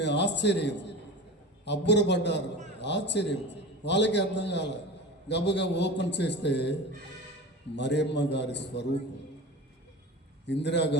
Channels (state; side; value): normal; both; correlation 0.32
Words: ఆశ్చర్యం, అబ్బురపడ్డారు. ఆశ్చర్యం వాళ్ళకి అర్థం కాల. గబగబా ఓపెన్ చేస్తే మరియమ్మ గారి స్వరూపం,